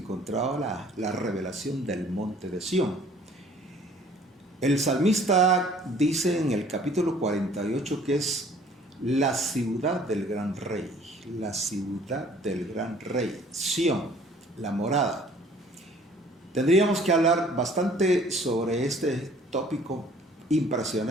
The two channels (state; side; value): normal; both; correlation 0.54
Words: la revelación del Monte de Sión. El salmista dice en el capítulo 48 que es la ciudad del gran rey, la ciudad del gran rey, Sión, la morada. Tendríamos que hablar bastante sobre este tópico